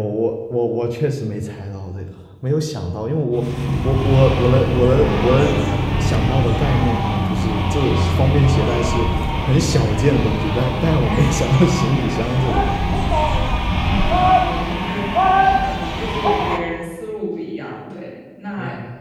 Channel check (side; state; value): both; identical; correlation 1.00